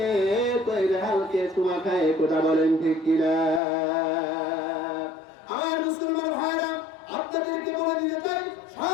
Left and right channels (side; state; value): right; drops out; at 3.6 s